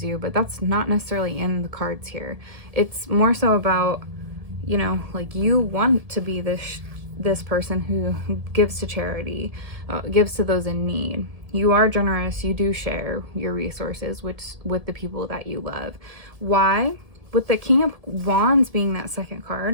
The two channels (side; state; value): left; late; 1.7 ms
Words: you, but that's not necessarily in the cards here. It's more so about, you know, like you want to be this person who gives to charity, gives to those in need. You are generous. You do share your resources with the people that you love. Why? With the King of Wands being that second